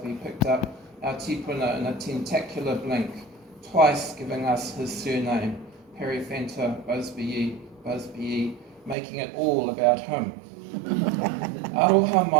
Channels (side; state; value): left; drops out; at 9.0 s